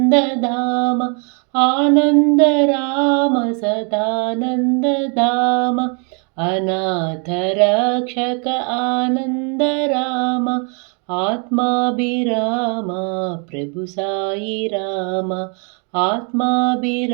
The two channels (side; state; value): left; quieter; 37.6 dB